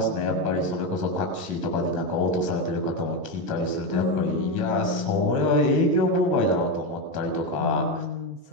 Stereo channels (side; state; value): left; late; 15 ms